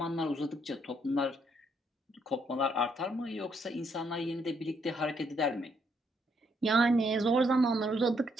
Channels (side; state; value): both; normal; correlation 0.73